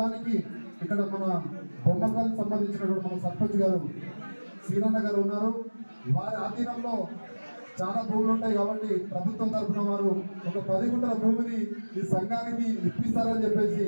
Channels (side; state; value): both; inverted; correlation -1.00